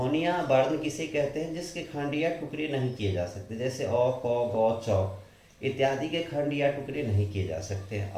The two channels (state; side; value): identical; both; correlation 1.00